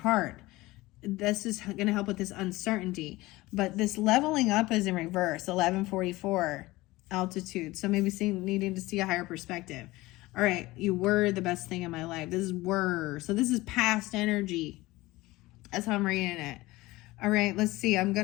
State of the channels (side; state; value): right; quieter; 19.6 dB